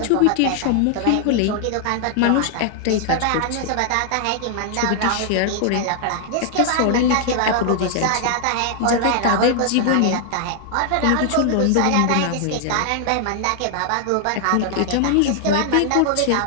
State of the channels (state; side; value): different; both; correlation 0.00